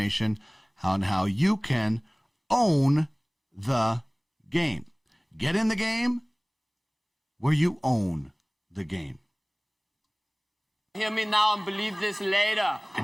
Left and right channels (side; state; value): both; identical; correlation 1.00